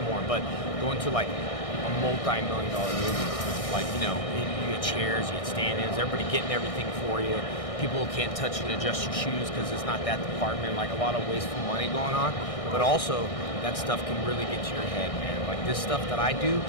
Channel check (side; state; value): right; late; 1.6 ms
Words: more, but going to like a multi-million-dollar movie, like, you know, you get chairs, you get stand-ins, everybody getting everything for you. People can't touch and adjust your shoes because it's not that department, like a lot of wasteful money going on. But also, that stuff can really get to your head, man. Like this stuff that I do